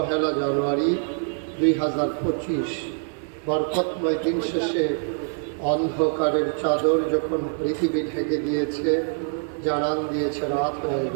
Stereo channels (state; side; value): silent; left; 56 dB below the other